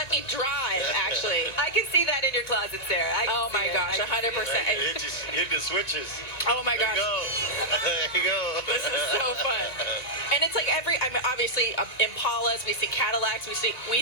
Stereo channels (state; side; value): late; right; 1.9 ms